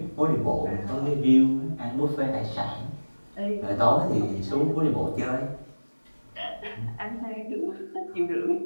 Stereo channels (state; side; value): inverted; both; correlation -1.00